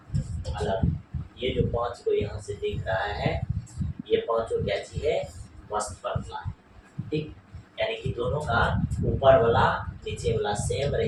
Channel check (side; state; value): both; identical; correlation 1.00